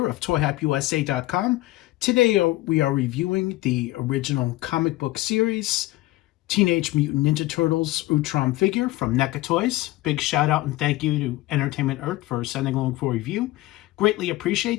of ToyHypeUSA.com. Today we are reviewing the original comic book series, Teenage Mutant Ninja Turtles Utrom figure from NECA Toys. Big shout out and thank you to Entertainment Earth for sending along for review. Greatly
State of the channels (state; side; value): quieter; right; 18.1 dB